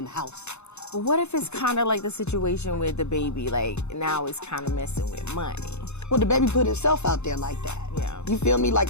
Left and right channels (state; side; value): late; right; 0.81 ms